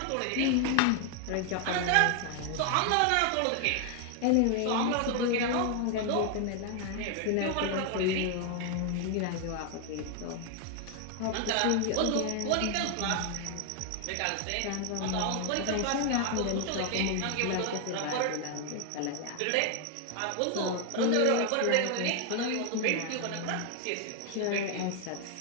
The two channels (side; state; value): both; different; correlation 0.00